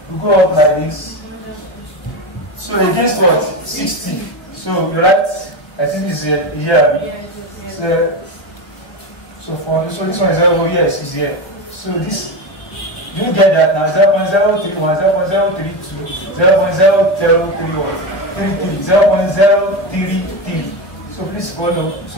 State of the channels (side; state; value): right; late; 1.4 ms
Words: We go up like this. So against what? 60. So you write, I think this is here. So for this one is over here, is here. So this, you get that now 0.031, 0.032, 0.031, 0.033. So please follow.